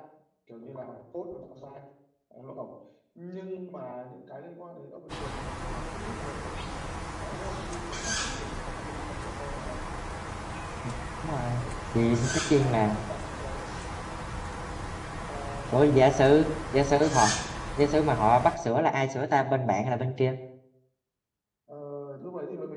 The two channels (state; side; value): identical; both; correlation 1.00